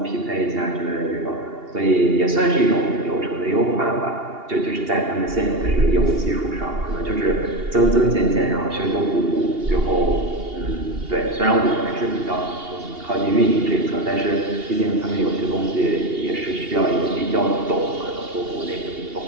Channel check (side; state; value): left; late; 2.8 ms